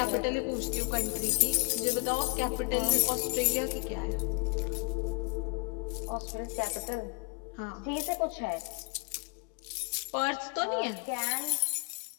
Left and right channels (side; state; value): right; quieter; 33.7 dB